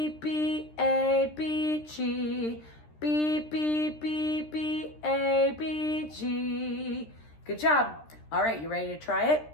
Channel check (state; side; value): late; right; 13 ms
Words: B, A, B, G. B, B, B, B, A, B, G. Good job. All right, you ready to try it?